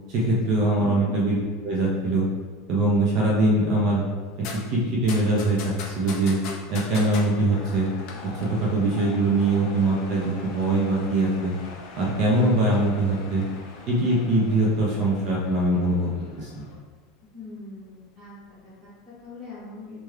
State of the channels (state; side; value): normal; both; correlation 0.36